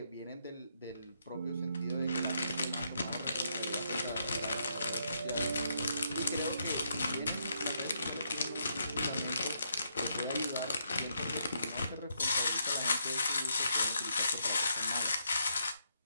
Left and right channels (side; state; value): both; inverted; correlation -0.77